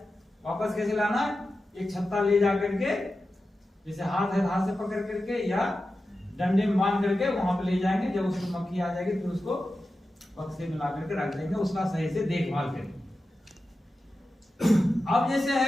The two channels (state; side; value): normal; both; correlation 0.92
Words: वापस कैसे लाना? एक छत्ता ले जा करके, जैसे हाथ है हाथ से पकड़ करके या डंडे में बांध करके वहां पे ले जाएंगे। जब उसमें मक्खी आ जाएगी फिर उसको बक्से में ला करके रख देंगे, उसका सही से देखभाल करेंगे। अब जैसे